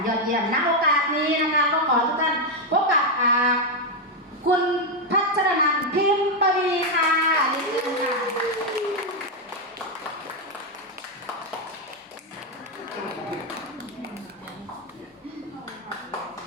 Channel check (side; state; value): both; normal; correlation 0.03